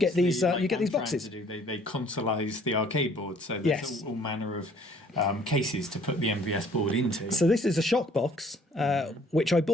these, obviously, you get I'm these trying boxes. to do. They consoleise the arcade board, so there's Yes. all manner of cases to put the MVS board into. So this is a shock box, which I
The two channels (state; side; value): normal; both; correlation 0.58